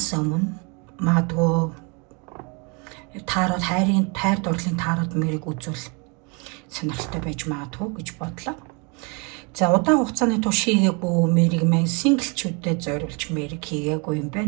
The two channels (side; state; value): left; quieter; 32.1 dB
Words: өмнө магадгүй таарууд хайр дурлалын таарууд мэрийг үзүүл сонирхолтой байж магадгүй гэж бодлоо. За удаан хугацааны турш хийгээгүй мэрийг маань синглчүүдэд зориулж мэрийг хийгээгүй юм